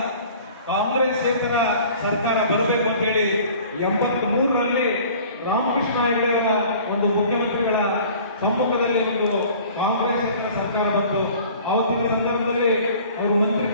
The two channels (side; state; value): both; inverted; correlation -0.48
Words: ಕಾಂಗ್ರೆಸ್ಸೇತರ ಸರ್ಕಾರ ಬರಬೇಕು ಅಂತ ಹೇಳಿ 83ರಲ್ಲಿ ರಾಮಕೃಷ್ಣ ಹೆಗಡೆಯವರ ಒಂದು ಮುಖ್ಯಮಂತ್ರಿಗಳ ಸಮ್ಮುಖದಲ್ಲಿ ಒಂದು ಕಾಂಗ್ರೆಸ್ಸೇತರ ಸರ್ಕಾರ ಬಂತು. ಅವತ್ತಿನ ಸಂದರ್ಭದಲ್ಲಿ ಅವರು